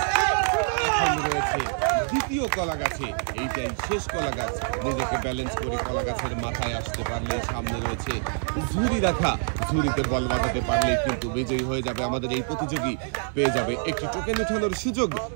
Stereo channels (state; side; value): silent; left; digital silence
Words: দ্বিতীয় কলা গাছে, এইটাই শেষ কলা গাছ। নিজেকে ব্যালেন্স করে কলা গাছের মাথায় আসতে পারলে সামনে রয়েছে ঝুড়ি রাখা, ঝুড়িতে বল বাঁধাতে পারলেই কিন্তু বিজয়ী হয়ে যাবে আমাদের এই প্রতিযোগী। পেয়ে যাবে একটি টোকেন উঠানোর সুযোগ।